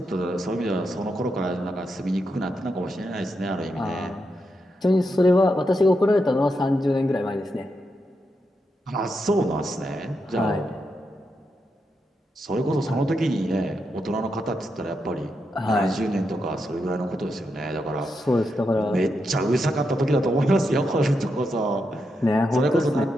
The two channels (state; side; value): normal; both; correlation 0.84